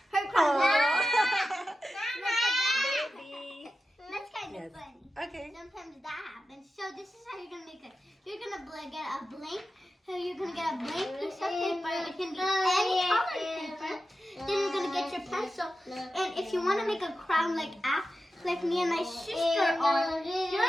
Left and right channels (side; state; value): both; normal; correlation 0.92